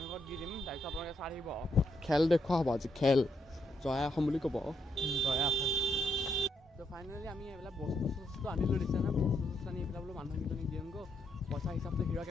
ঘৰত দি দিম। তাৰপিছত আপোনালোকে চাই থাকিব, খেল দেখুওৱা হ'ব আজি। খেল জয়া অসম বুলি ক'ব, জয়া অসম। তো ফাইনেলি আমি এইবিলাক বস্তু আনিলোঁ, দিছে নহয়। বস্তু আনি এইবিলাক বোলো মানুহকেইজনীক দিওঁগৈ। পইচা হিচাপটো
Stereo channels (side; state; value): both; normal; correlation 0.77